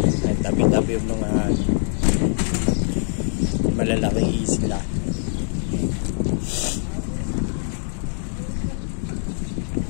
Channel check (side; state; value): right; silent; digital silence